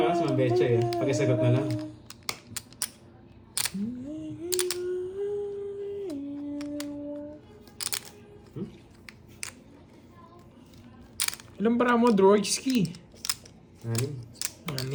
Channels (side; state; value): both; identical; correlation 1.00